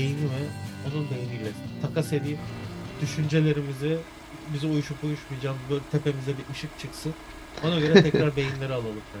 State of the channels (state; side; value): identical; both; correlation 1.00